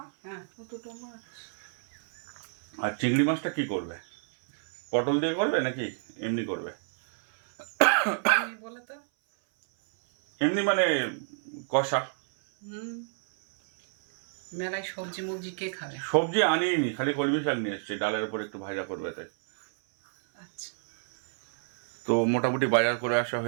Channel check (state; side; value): silent; left; 58 dB below the other